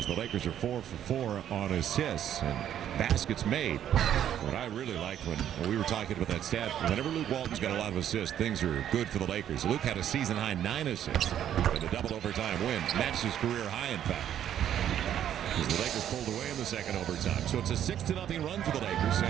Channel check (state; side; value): quieter; left; 10.4 dB